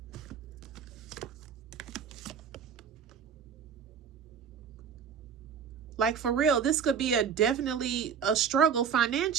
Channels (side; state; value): left; quieter; 7.1 dB